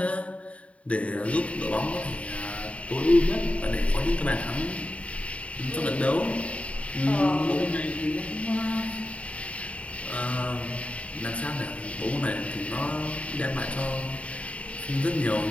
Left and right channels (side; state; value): right; late; 0.064 ms